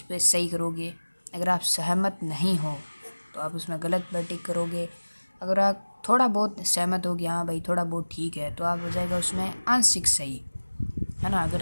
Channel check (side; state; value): both; inverted; correlation -1.00